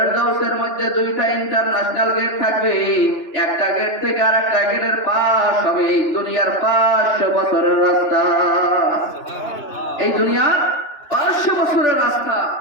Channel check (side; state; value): right; late; 2.9 ms